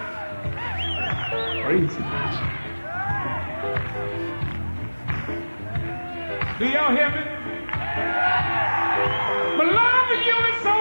Crazy. Do y'all hear me? But love for you is so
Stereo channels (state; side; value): inverted; both; correlation -1.00